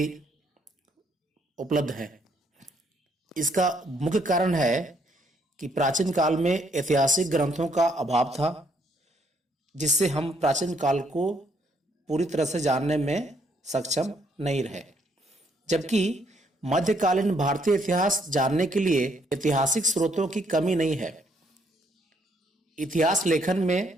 उपलब्ध है। इसका मुख्य कारण है कि प्राचीन काल में ऐतिहासिक ग्रंथों का अभाव था, जिससे हम प्राचीन काल को पूरी तरह से जानने में सक्षम नहीं रहे। जबकि मध्यकालीन भारतीय इतिहास जानने के लिए ऐतिहासिक स्रोतों की कमी नहीं है। इतिहास लेखन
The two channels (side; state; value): both; normal; correlation 0.70